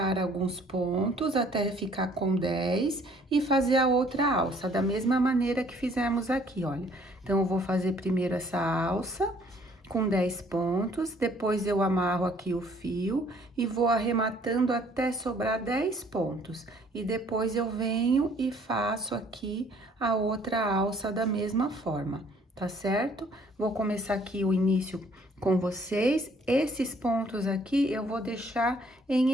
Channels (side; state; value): both; normal; correlation 0.60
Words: alguns pontos até ficar com 10 e fazer a outra alça, da mesma maneira que fizemos aqui, olha. Então, eu vou fazer primeiro essa alça com 10 pontos, depois eu amarro aqui o fio e vou arrematando até sobrar 10 pontos. E depois eu venho e faço aqui a outra alça da mesma forma, tá certo? Vou começar aqui o início com vocês. Esses pontos aqui eu vou deixar em